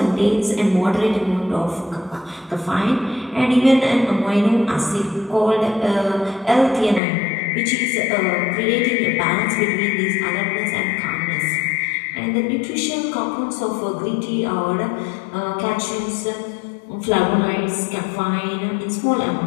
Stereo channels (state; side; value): drops out; right; at 7.0 s